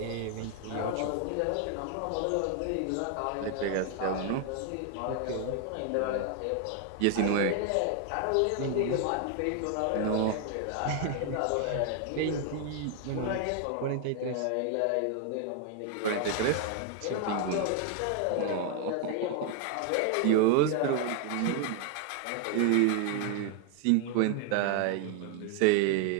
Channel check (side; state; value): both; different; correlation 0.00